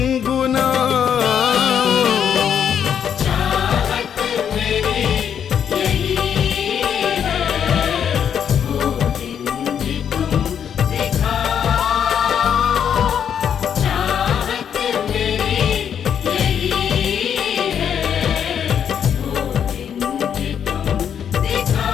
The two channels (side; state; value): right; quieter; 8.4 dB